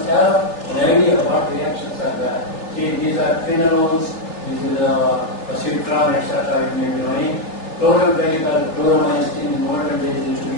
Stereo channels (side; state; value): right; late; 3.3 ms